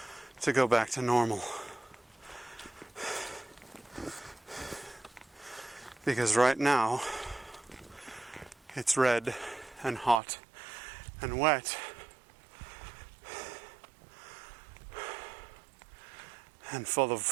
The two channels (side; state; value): left; drops out; at 10.2 s